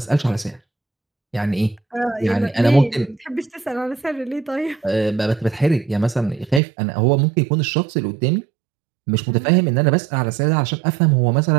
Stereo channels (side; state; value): left; drops out; at 6.6 s